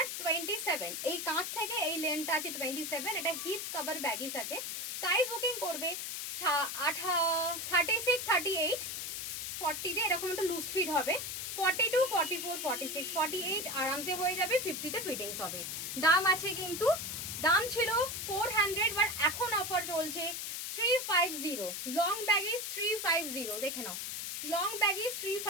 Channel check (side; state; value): left; noise; hiss, 4 dB below the sound